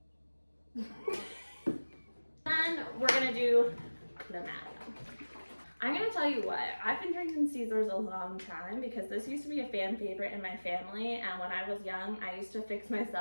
Then we're gonna do Clamato. I'm gonna tell you what, I've been drinking Caesars a long time because this used to be a fan favorite in my family, and when I was young, I used to fix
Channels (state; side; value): inverted; both; correlation -1.00